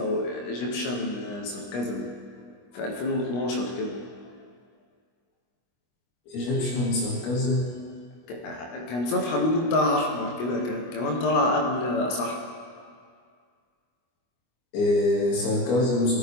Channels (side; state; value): right; late; 25 ms